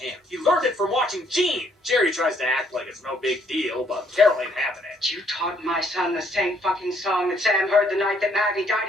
He learned it from watching Gene. Jerry tries to act like it's no big deal, but Carol ain't having it. You taught my son the same fucking song that Sam heard the night that Maddie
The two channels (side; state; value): both; normal; correlation 0.67